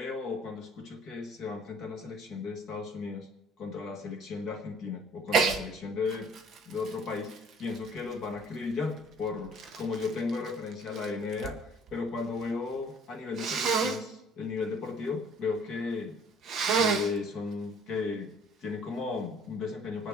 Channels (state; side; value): normal; both; correlation 0.54